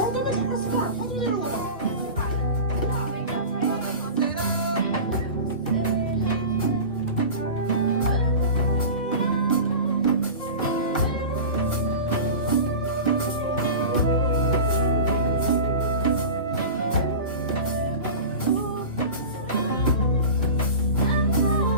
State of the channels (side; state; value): both; inverted; correlation -0.32